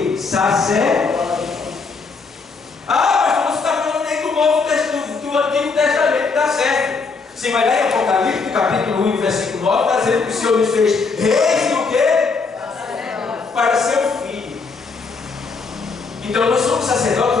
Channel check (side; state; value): right; quieter; 4.5 dB